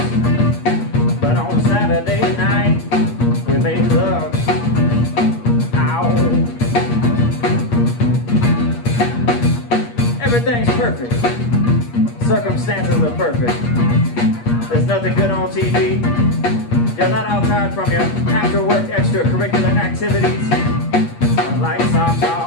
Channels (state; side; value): late; right; 8.5 ms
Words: but on Saturday night we make love. Ow. Everything's perfect. Circumstances are perfect. There's nothing good on TV. You're not outside from your after-work extracurricular activities like